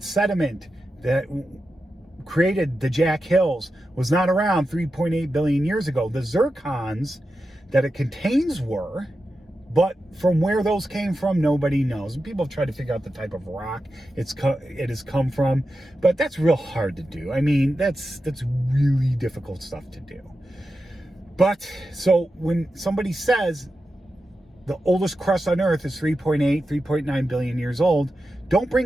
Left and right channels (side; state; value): both; normal; correlation 0.90